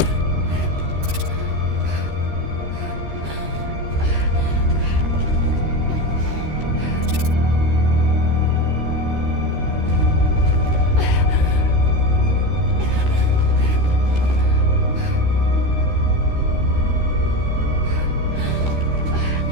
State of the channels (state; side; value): late; left; 13 ms